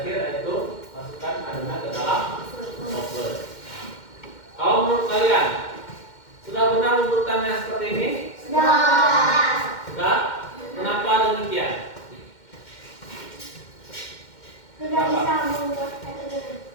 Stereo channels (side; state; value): right; late; 2.1 ms